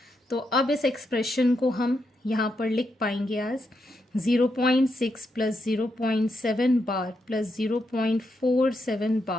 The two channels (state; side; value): normal; both; correlation 0.82